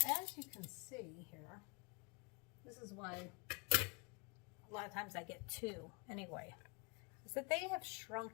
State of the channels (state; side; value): quieter; right; 32.1 dB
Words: you can see here, this is why a lot of times I get 2 anyway, is that they have